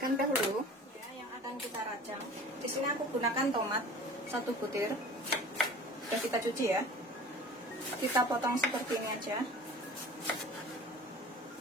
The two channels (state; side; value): normal; both; correlation 0.42